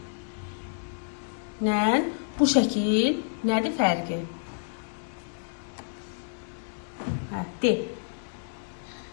nə? Bu şəkil nədir fərqi? Hə, de.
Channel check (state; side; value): silent; right; digital silence